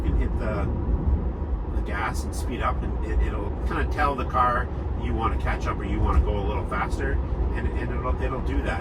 can hit the gas and speed up, and it'll kind of tell the car you want to catch up or you want to go a little faster, and it'll do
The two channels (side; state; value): both; identical; correlation 1.00